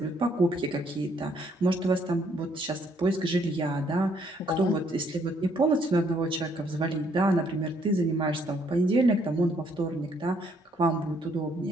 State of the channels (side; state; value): both; normal; correlation 0.68